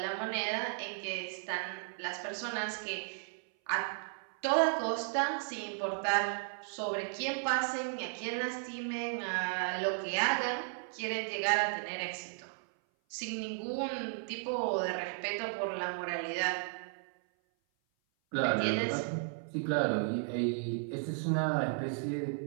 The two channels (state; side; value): silent; left; 55 dB below the other